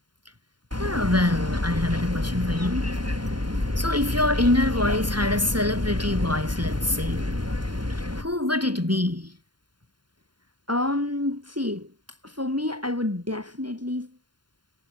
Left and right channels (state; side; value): late; left; 0.71 ms